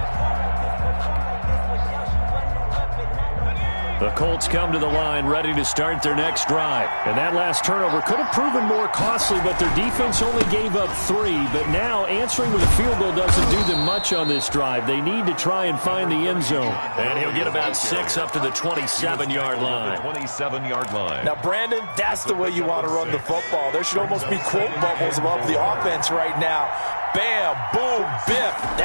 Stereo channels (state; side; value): inverted; both; correlation -1.00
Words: The Colts come to the line ready to start their next drive. And that last turnover could have proven more costly, but their defense only gave up 3. But now answering with a field goal doesn't do them much on this drive. They need to try and find the end zone. And he'll get about 6 up to the 27-yard line. 27-yard line. Now, Brandon, that's the way you want to run the football. There should almost be quote bubbles above the offense right now. Bam, boom, biff.